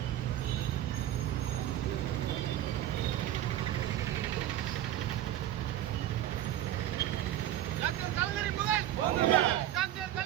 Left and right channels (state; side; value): quieter; left; 12.6 dB